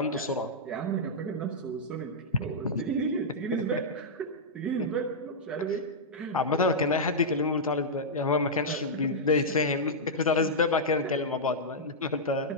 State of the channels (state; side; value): normal; both; correlation -0.08